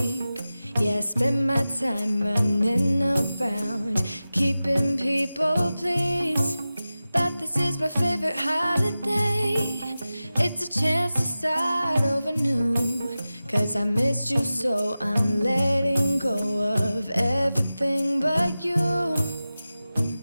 Yeah, I spend my time running around, keeping people pleased. But this is my favorite holiday. It's a chance to start over new. Cause I missed you, so I'm letting go of everything but you.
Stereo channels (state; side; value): inverted; both; correlation -0.95